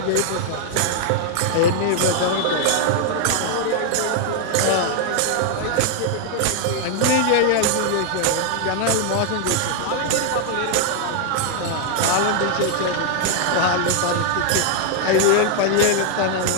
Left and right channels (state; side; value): different; both; correlation 0.00